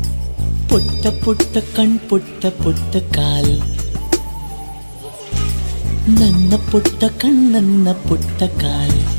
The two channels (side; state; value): both; inverted; correlation -1.00